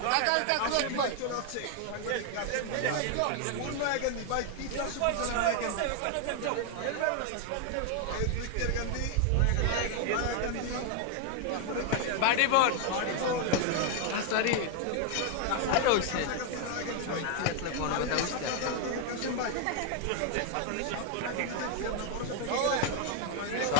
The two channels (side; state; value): both; different; correlation 0.00